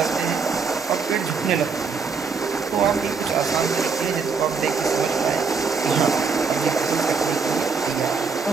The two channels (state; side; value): quieter; left; 5.2 dB